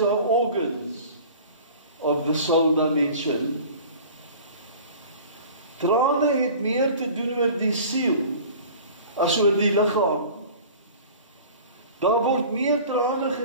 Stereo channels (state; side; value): inverted; both; correlation -0.42